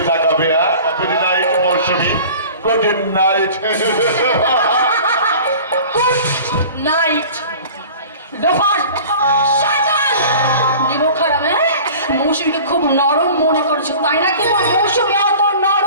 তাকাবে। গুড নাইট মৌসুমী, গুড নাইট। নাইট লোফার শয়তান নিমক খারাপ। মৌসুমীকে খুব নরম মনে করেছে, তাই না? কিন্তু মৌসুমী অত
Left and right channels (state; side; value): inverted; both; correlation -0.42